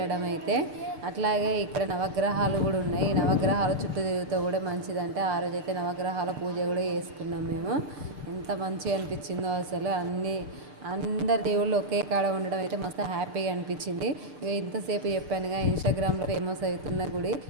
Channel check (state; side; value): late; left; 6.7 ms